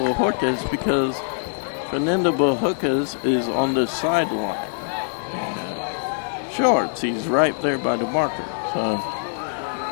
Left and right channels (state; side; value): silent; right; digital silence